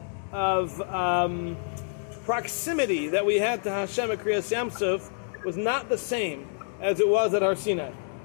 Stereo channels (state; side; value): silent; right; 60 dB below the other